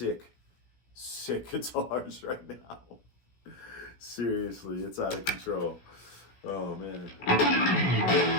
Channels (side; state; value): right; late; 16 ms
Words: guitars right now. Seriously, it's out of control. Oh man.